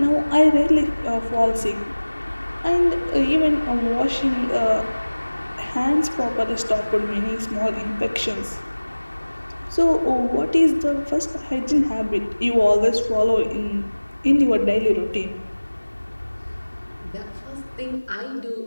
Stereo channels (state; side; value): inverted; both; correlation -1.00